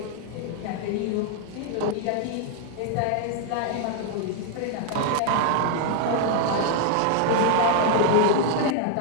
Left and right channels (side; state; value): both; different; correlation 0.00